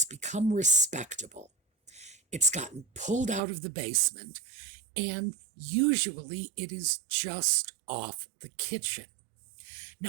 become respectable. It's gotten pulled out of the basement, and usually it is just off the kitchen.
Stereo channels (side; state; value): left; drops out; at 3.4 s